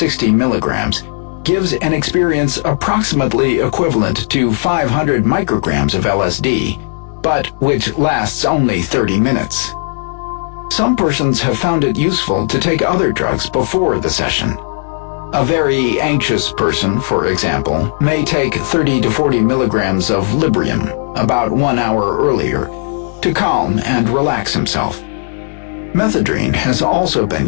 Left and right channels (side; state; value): right; silent; digital silence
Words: milligrams, gives an experience approximately equivalent to 500 micrograms of LSD, but which lasts only 30 minutes. Some persons have found it useful to take other drugs before the session. A very anxious person, for example, may take 30 to 40 milligrams of Librium about 1 hour earlier to calm and relax himself. Methadone has also been